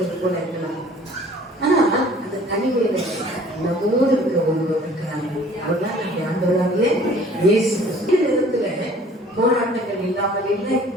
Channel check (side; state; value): both; normal; correlation 0.52